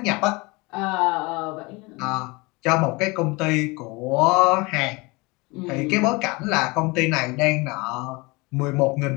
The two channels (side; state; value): right; quieter; 25.4 dB